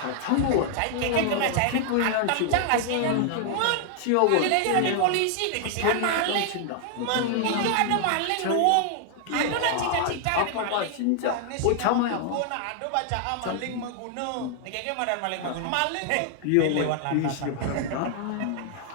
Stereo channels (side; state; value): both; different; correlation 0.00